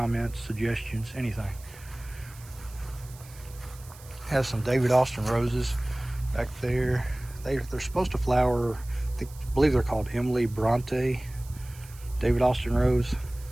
suggestions, anything. Have some David Austin roses back there. They're supposed to flower. I believe they're called Emily Bronte David Austin rose.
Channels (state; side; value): noise; right; hiss, 21 dB below the sound